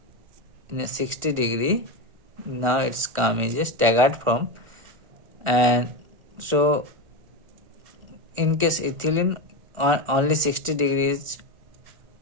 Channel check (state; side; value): late; left; 1.4 ms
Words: in a 60 degree, now it's come as a staggered form. And so in case ethylene only 60 degrees